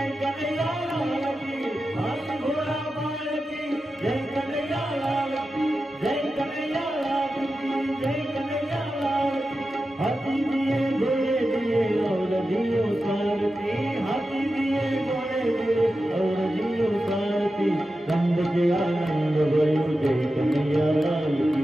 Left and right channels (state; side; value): normal; both; correlation 0.91